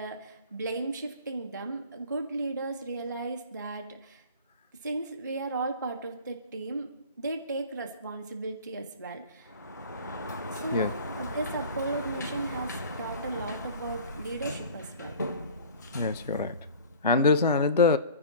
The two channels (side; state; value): both; inverted; correlation -0.41